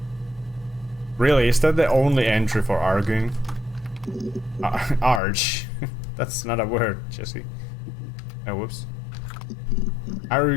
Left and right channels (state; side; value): drops out; right; at 5.2 s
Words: Really, is that the only entry for arguing? Arge. That's not a word, Jesse. Oh, whoops.